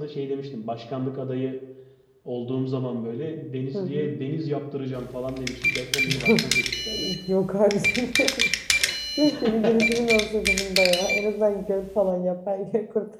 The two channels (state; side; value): identical; both; correlation 1.00